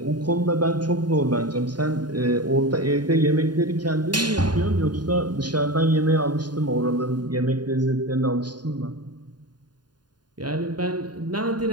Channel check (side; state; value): left; late; 0.70 ms